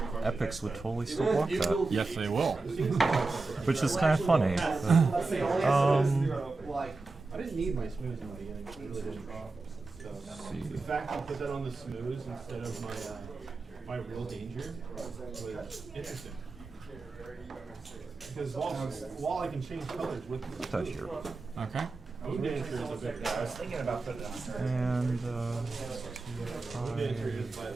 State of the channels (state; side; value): quieter; left; 3.6 dB